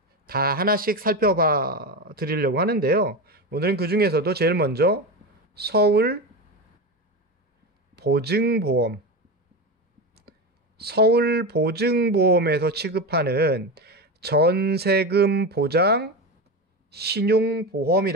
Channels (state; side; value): normal; both; correlation 0.20